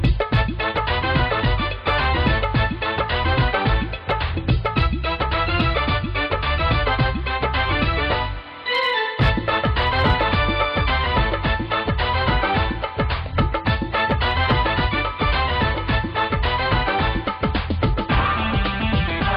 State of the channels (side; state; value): both; identical; correlation 1.00